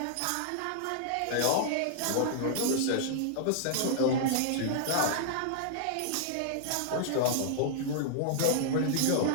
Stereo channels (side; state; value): both; different; correlation -0.01